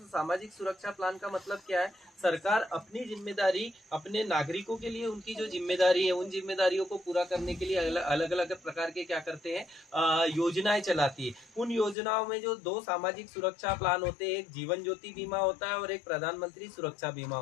सामाजिक सुरक्षा प्लान का मतलब क्या है? सरकार अपनी जिम्मेदारी अपने नागरिकों के लिए उनकी जो जिम्मेदारी है उन जिम्मेदारियों को पूरा करने के लिए अलग अलग प्रकार के क्या करते हैं, योजनाएं चलाती है। उन योजनाओं में जो दो सामाजिक सुरक्षा प्लान होते हैं, एक जीवन ज्योति बीमा होता है और एक प्रधानमंत्री सुरक्षा बीमा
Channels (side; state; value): right; drops out; at 12.0 s